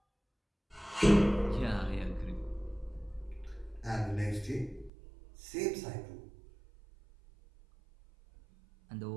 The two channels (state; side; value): drops out; left; at 4.9 s